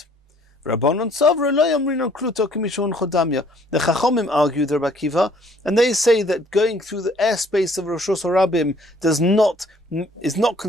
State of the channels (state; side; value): normal; both; correlation 0.60